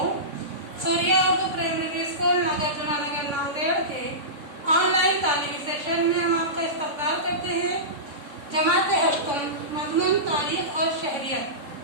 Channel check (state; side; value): late; left; 3.6 ms